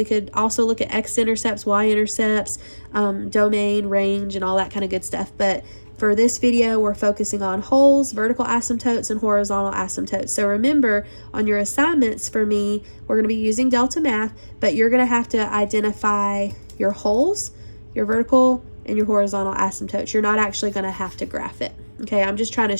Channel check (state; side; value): inverted; both; correlation -1.00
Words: could also look at x-intercepts, y-intercepts, domain, range, and all that kind of good stuff. But for this video, we're focusing on holes, vertical asymptotes, and horizontal asymptotes. So remember, on your assignments for me, we're going to be using Delta Math, but you're going to have to identify your holes, your vertical, and your horizontal asymptotes. You're not actually going to have to graph it. Okay, I'm just trying to